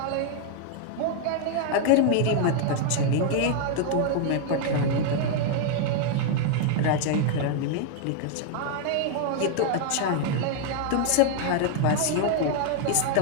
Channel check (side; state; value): both; different; correlation 0.00